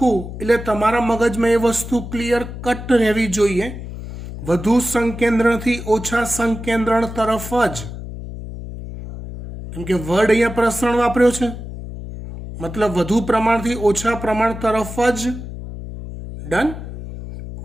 એટલે તમારા મગજમાં એ વસ્તુ ક્લિયર કટ રહેવી જોઈએ, વધુ સંકેન્દ્રણથી ઓછા સંકેન્દ્રણ તરફ જ, કેમ કે વર્ડ અહીંયા પ્રસરણ વાપર્યો છે મતલબ વધુ પ્રમાણથી ઓછા પ્રમાણ તરફ જ। ડન?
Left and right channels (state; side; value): noise; left; hum, 10 dB below the sound